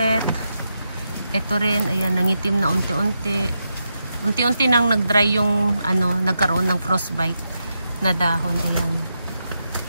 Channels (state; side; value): inverted; both; correlation -0.85